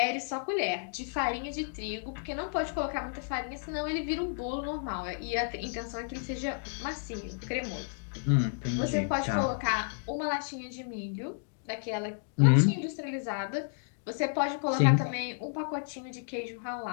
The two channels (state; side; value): silent; right; digital silence